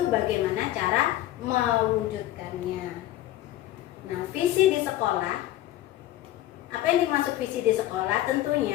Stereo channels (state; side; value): quieter; right; 14.4 dB